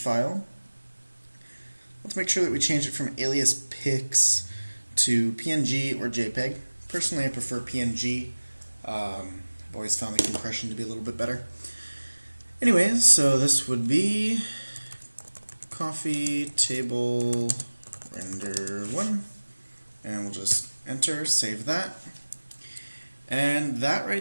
Let's make sure that we change it from alias pics to PNG or JPEG. Personally, I prefer PNG. I've always found the compression to be a little bit better. Anyways, so this would be coffee table render 1, and we'll just enter, save that. And that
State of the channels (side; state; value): both; inverted; correlation -1.00